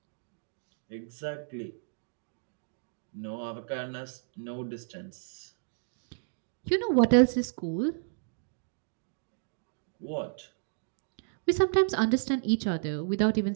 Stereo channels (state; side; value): silent; left; digital silence